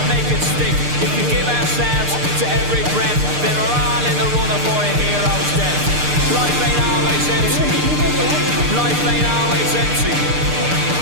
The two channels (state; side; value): late; left; 6.7 ms